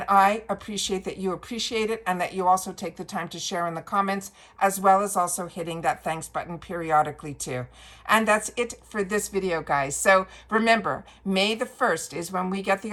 I appreciate that you appreciate it and that you also take the time to share in the comments, as well as also hitting that thanks button periodically too. And that's it for this video, guys. So remember, May the 1st is when we get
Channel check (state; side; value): identical; both; correlation 1.00